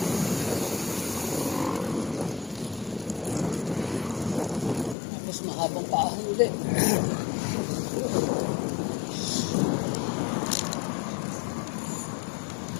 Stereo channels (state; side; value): drops out; right; at 5.0 s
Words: Mahabang paahon ulit.